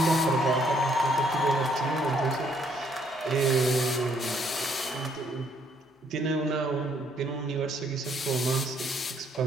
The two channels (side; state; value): both; normal; correlation 0.67